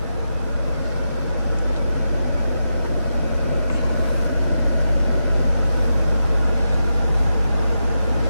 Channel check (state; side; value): inverted; both; correlation -0.87